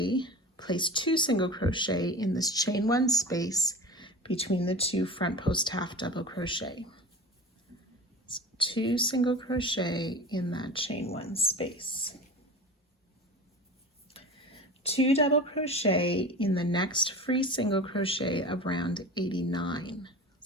place 2 single crochet in this chain 1 space between the 2 front post half double crochet. So 2 single crochet in that chain 1 space. 2 double crochet in the next free single crochet of round 89.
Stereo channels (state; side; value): normal; both; correlation 0.34